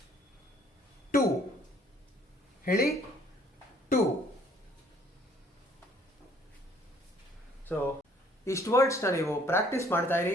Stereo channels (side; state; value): both; normal; correlation 0.60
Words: ಟು, ಹೇಳಿ, ಟು. ಸೊ ಇಷ್ಟು ವರ್ಡ್ಸ್ನ ನೀವು ಪ್ರಾಕ್ಟೀಸ್ ಮಾಡ್ತಾ ಇರಿ,